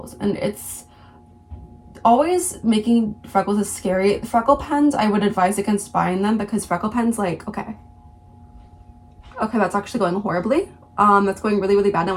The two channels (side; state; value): both; identical; correlation 1.00